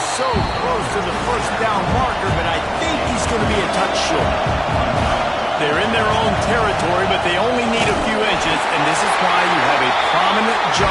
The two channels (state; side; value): identical; both; correlation 1.00